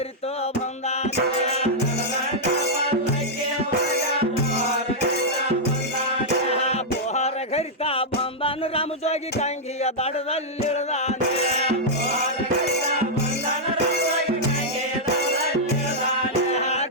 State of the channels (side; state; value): both; normal; correlation -0.06